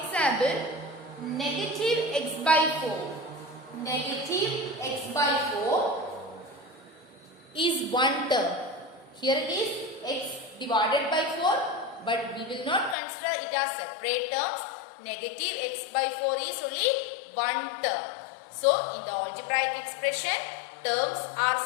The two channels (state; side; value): drops out; right; at 13.0 s